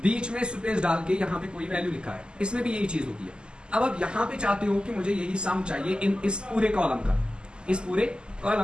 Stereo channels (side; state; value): left; late; 0.048 ms